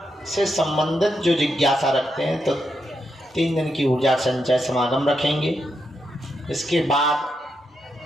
से संबंधित जो जिज्ञासा रखते हैं तो 3 दिन की ऊर्जा संचय समागम रखेंगे। इसके बाद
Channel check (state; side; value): normal; both; correlation 0.83